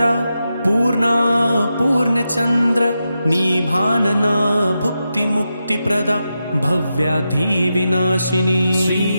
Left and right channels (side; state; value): both; inverted; correlation -0.88